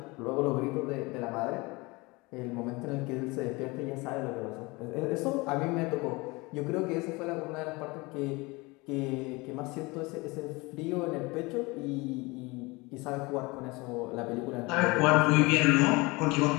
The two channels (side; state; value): right; quieter; 24.6 dB